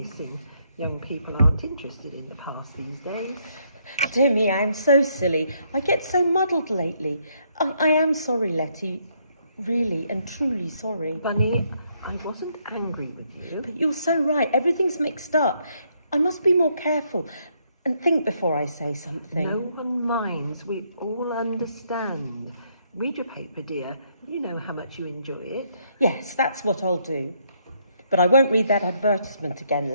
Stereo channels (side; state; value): both; inverted; correlation -0.72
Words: Young people aren't interested in the past these days. Dear me, I am so silly. I get so muddled lately. I am sorry, Letty. Really and truly sorry. Bunny, I wasn't angry with you. But you're so right. Everything's mixed up. I must be more careful and think before I say something. No one minds. We all understand. Read your paper, dear. You know how much you enjoy it. Yes, that's what I'll do. But I won't read that advertisement again,